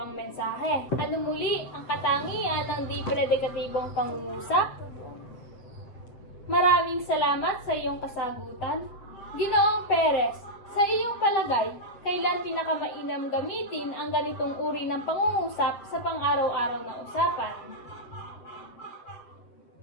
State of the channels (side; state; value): right; late; 8.2 ms